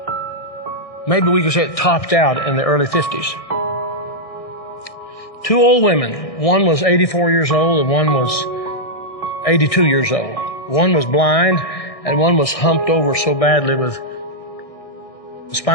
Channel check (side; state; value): right; late; 1.6 ms